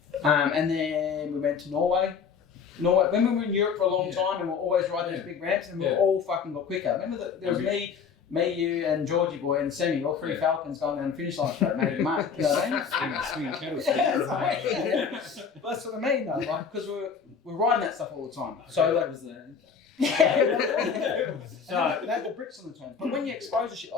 And then we went to Norway. When we were in Europe for a long Yeah. time, and we were always riding Yeah. those big ramps, and we Yeah. all fucking got quicker. Remember that there was Okay. me, you, and Georgie boy, and Semi, all three Yeah. Falcons going down the finish line straight, making mark. You know what I mean? Swinging kettles. Yeah, that's right, yeah. That's what I mean, though, like because we're riding that stuff all the time. So like, was there. yeah, they had the bricks on the turn. But when you expose to shit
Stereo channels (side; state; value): right; quieter; 6.3 dB